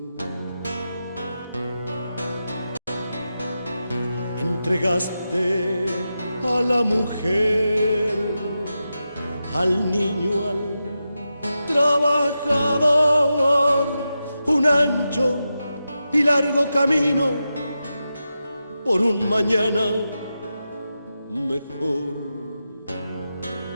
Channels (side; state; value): both; inverted; correlation -0.90